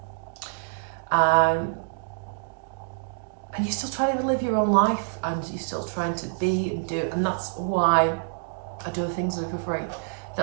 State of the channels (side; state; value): left; silent; digital silence